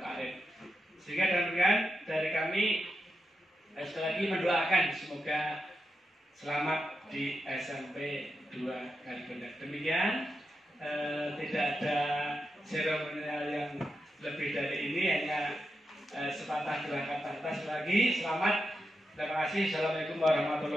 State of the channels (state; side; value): normal; both; correlation 0.87